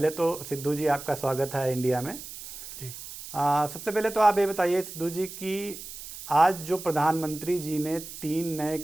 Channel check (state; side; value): noise; right; hiss, 12 dB below the sound